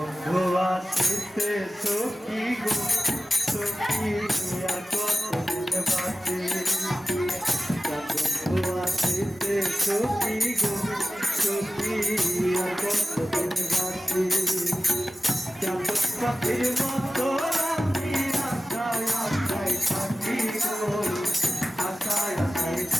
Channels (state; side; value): normal; both; correlation 0.95